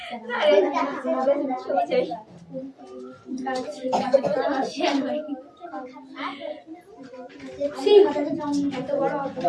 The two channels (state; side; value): identical; both; correlation 1.00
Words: এত বড় অত